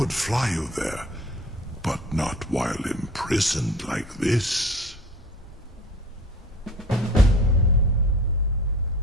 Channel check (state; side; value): normal; both; correlation 0.42